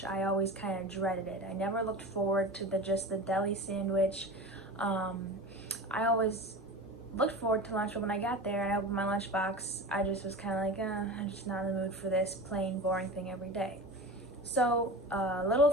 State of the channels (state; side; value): normal; both; correlation 0.31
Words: I always kind of dreaded it. I never looked forward to just the deli sandwich. I always looked forward to lunch, but when I got there and I opened my lunchbox, I just was kind of like, I'm just not in the mood for this plain, boring thing every day. So a little